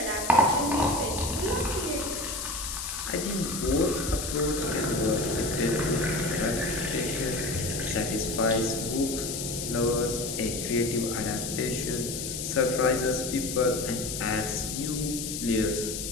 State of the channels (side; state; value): left; noise; hiss, 5 dB below the sound